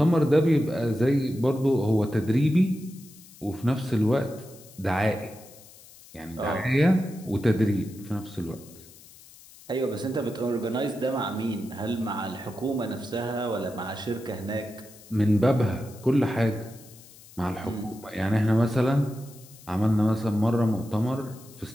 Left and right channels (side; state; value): left; noise; hiss, 22 dB below the sound